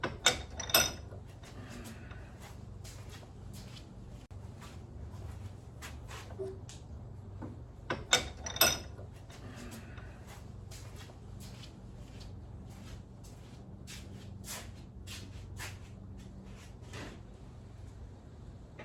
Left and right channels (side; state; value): both; identical; correlation 1.00